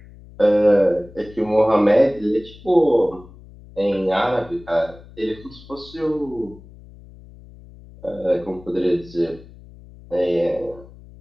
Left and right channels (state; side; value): noise; left; hum, 21 dB below the sound